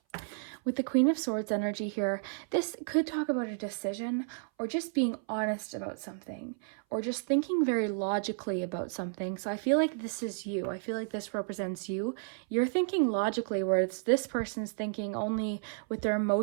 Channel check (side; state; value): left; silent; 56 dB below the other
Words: With the Queen of Swords energy here, this could talk about a decision or just being honest about something or just thinking very logically about something. So I feel like this is you. I feel like this represents you. You're thinking logically, whereas this person's thinking only with their